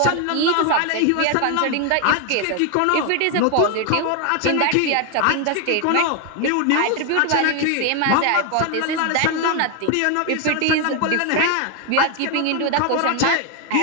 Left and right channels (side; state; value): both; different; correlation 0.01